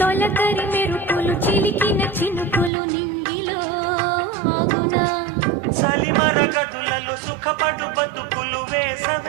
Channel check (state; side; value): drops out; left; at 2.7 s